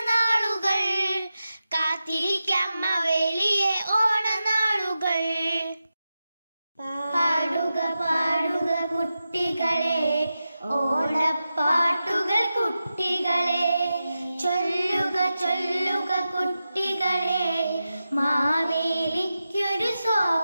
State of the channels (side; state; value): both; inverted; correlation -0.91